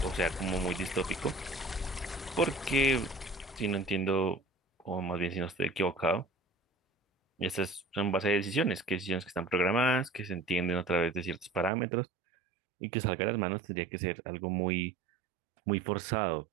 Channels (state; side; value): drops out; left; at 11.7 s